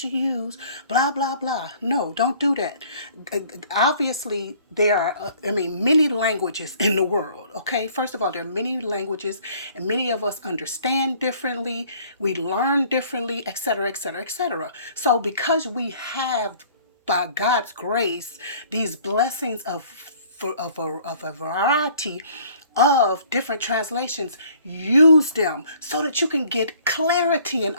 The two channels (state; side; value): inverted; both; correlation -0.55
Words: use, blah, blah, blah. No, don't do that. Obviously, there are, many languages in the world, okay? First of all, there are many languages, and many of us understand differently, we learn differently, etc., etc., etc. So because we have, by God's grace, these blessings of a variety of different translations, use them so that you can get clarity and